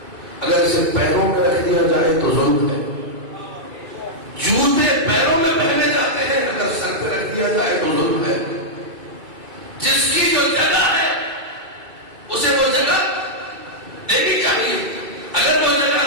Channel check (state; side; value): late; left; 2.4 ms